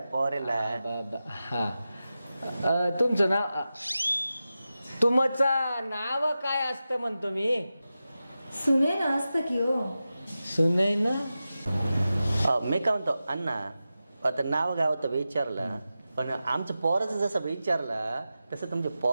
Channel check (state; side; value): inverted; both; correlation -0.93